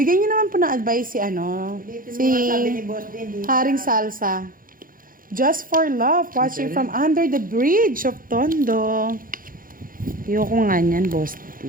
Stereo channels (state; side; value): late; left; 0.41 ms